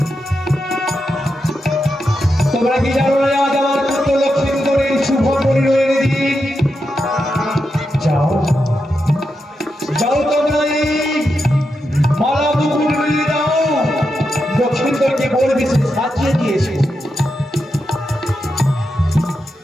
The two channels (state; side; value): normal; both; correlation 0.86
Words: তোমরা কি জানো না আজ আমার পুত্র লক্ষ্মীন্দরের শুভ পরিণয়ের দিন? যাও যাও, তোমরা এই মালা মুকুট নিয়ে যাও, লক্ষ্মীন্দরকে বলবে সে সাজিয়ে দিয়েছে।